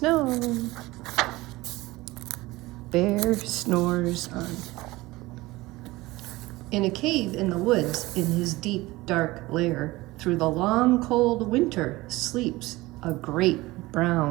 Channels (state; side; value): quieter; left; 19.9 dB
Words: Bear snores on. In a cave in the woods, in his deep, dark lair, through the long, cold winter, sleeps a great